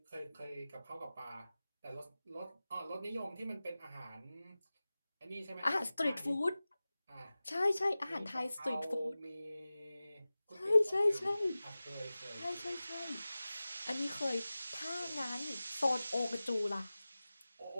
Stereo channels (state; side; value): inverted; both; correlation -0.97